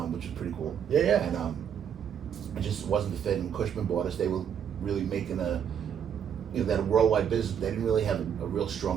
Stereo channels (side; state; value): left; quieter; 8.4 dB